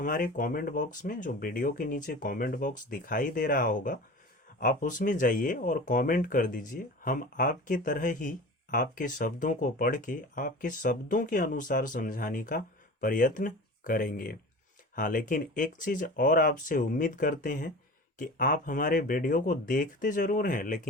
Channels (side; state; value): both; normal; correlation 0.36